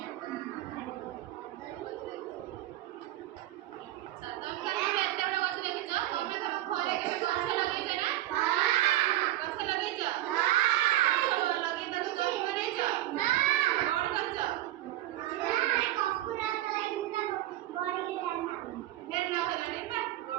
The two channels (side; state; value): left; quieter; 14.9 dB